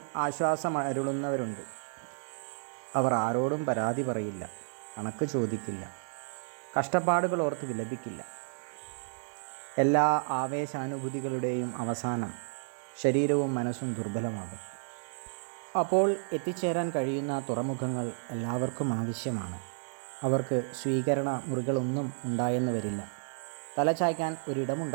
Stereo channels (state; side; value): silent; left; digital silence